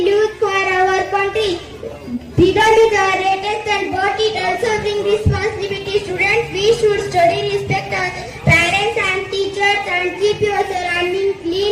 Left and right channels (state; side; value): identical; both; correlation 1.00